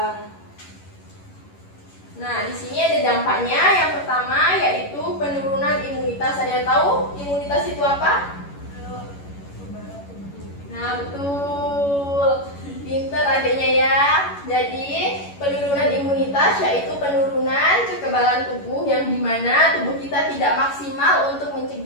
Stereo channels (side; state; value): right; late; 11 ms